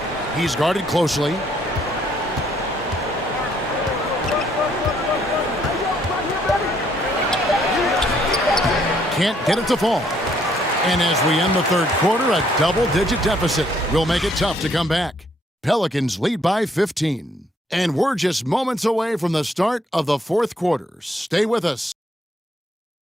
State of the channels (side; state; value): both; normal; correlation 0.68